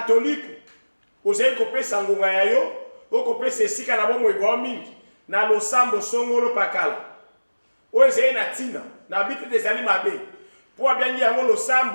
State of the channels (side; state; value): both; inverted; correlation -1.00